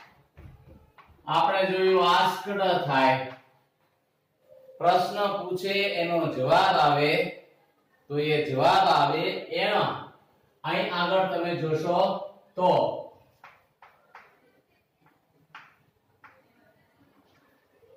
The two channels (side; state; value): both; identical; correlation 1.00